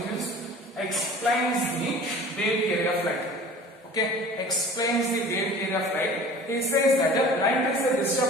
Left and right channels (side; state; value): both; normal; correlation 0.43